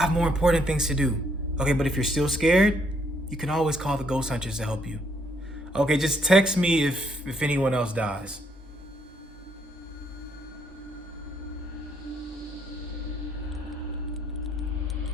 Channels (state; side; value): normal; both; correlation 0.71